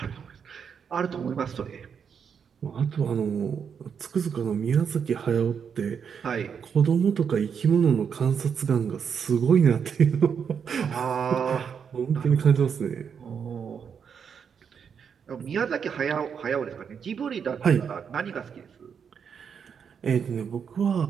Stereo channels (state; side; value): quieter; left; 7.0 dB